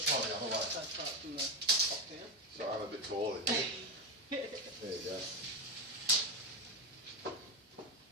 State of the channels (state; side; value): normal; both; correlation 0.12